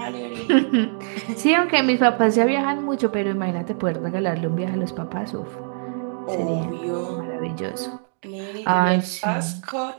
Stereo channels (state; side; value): silent; left; 63 dB below the other